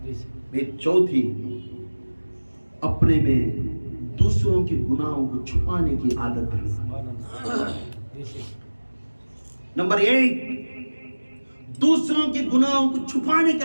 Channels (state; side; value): inverted; both; correlation -1.00